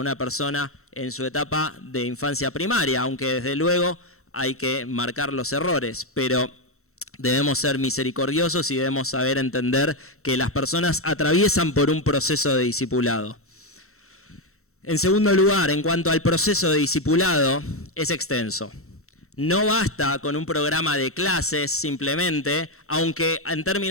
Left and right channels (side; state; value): right; late; 0.63 ms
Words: persona en su etapa de infancia primaria, aunque desde luego hay que marcar los errores, pero debemos ser misericordiosos y debemos saber entender que las personas atraviesan por un proceso de discipulado. En segundo lugar, en cuanto al proceso de discipulado, es extenso. No basta con un programa de clases simplemente, aunque en